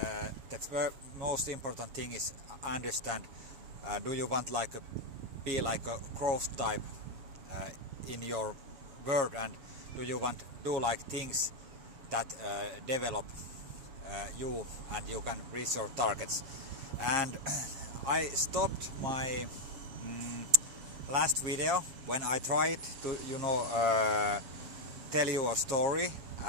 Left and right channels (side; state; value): left; late; 7.3 ms